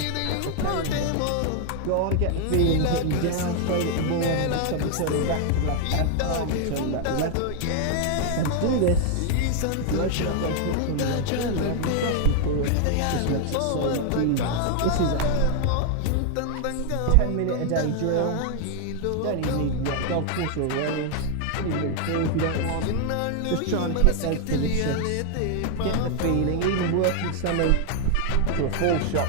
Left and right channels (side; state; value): both; different; correlation 0.00